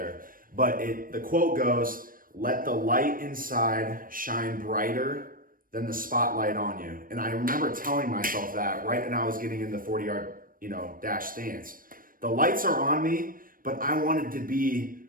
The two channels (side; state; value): left; late; 0.41 ms